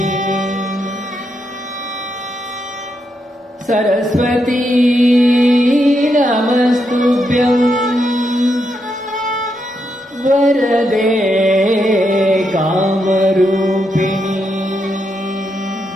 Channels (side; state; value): both; normal; correlation 0.81